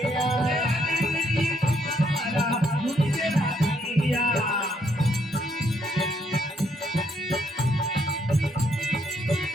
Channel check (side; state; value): both; normal; correlation 0.72